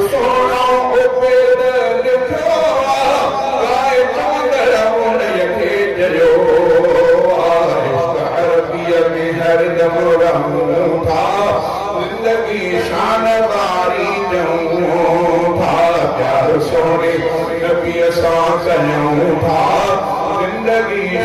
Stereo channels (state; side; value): identical; both; correlation 1.00